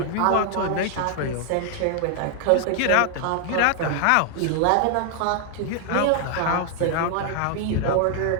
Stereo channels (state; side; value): different; both; correlation 0.00